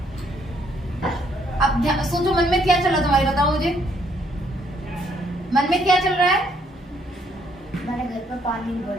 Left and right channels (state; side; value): normal; both; correlation 0.69